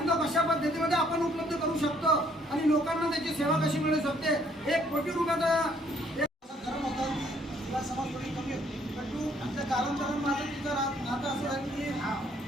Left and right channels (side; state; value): both; normal; correlation 0.65